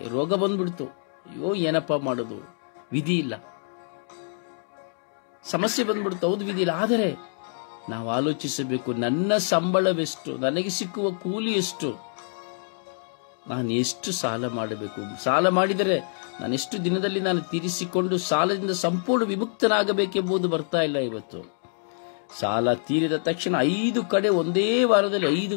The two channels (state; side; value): silent; right; digital silence